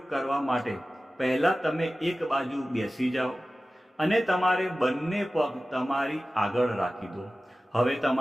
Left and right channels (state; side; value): normal; both; correlation 0.96